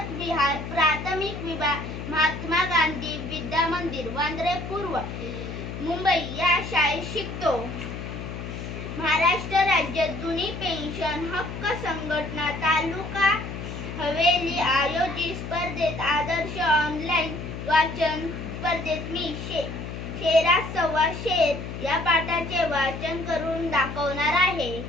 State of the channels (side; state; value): left; noise; hum, 8 dB below the sound